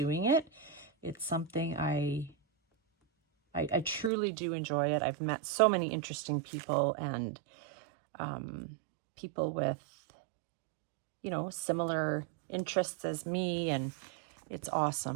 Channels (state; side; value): drops out; left; at 4.1 s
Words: it. It's something I truly do enjoy it. I've met so many interesting people, and people with, you know, similar interests as me, and it's